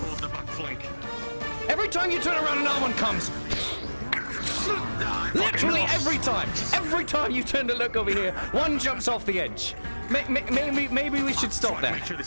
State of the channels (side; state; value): both; inverted; correlation -1.00